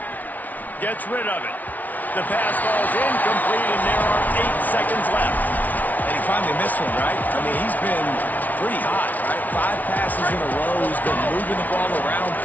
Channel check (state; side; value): late; right; 0.077 ms